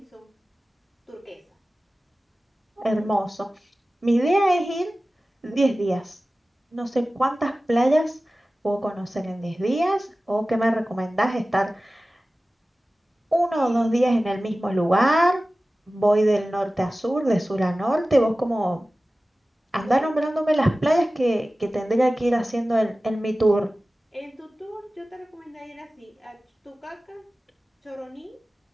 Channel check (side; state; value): both; normal; correlation 0.96